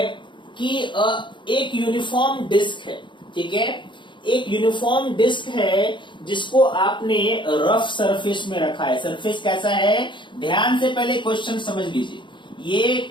कि एक यूनिफॉर्म डिस्क है, ठीक है, एक यूनिफॉर्म डिस्क है जिसको आपने रफ सरफेस में रखा है। सरफेस कैसा है, ध्यान से पहले क्वेश्चन समझ लीजिए। ये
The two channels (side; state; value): right; late; 0.23 ms